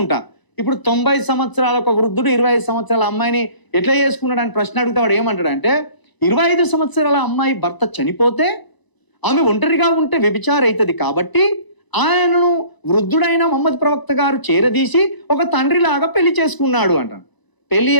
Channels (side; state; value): right; late; 1.0 ms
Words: ఇప్పుడు 90 సంవత్సరాల ఒక వృద్ధుడు 25 సంవత్సరాల అమ్మాయిని ఎట్లా చేసుకున్నాడు అని ప్రశ్న అడిగితే వాడు ఏమంటాడంటే, 25 సంవత్సరాల అమ్మాయి భర్త చనిపోతే ఆమె ఒంటరిగా ఉంటే వ్యభిచారం అవుతుంది కాబట్టి ఆయనను వృద్ధుడైన మహమ్మద్ ప్రవక్త గారు చేరదీసి ఒక తండ్రిలాగా పెళ్లి చేసుకున్నాడు అంటాడు. పెళ్లి